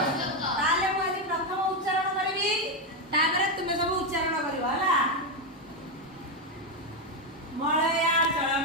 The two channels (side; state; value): both; normal; correlation 0.07